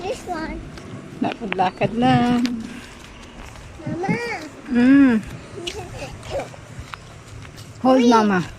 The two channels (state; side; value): identical; both; correlation 1.00